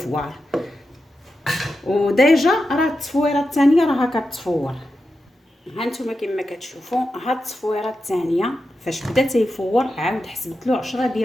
وديجا راه التصفويره الثانيه راها كتفور. ها نتوما كما كتشوفوا ها التصفويره الثانيه فاش بدا تيفور عاود حسبت له 10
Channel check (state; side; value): normal; both; correlation 0.89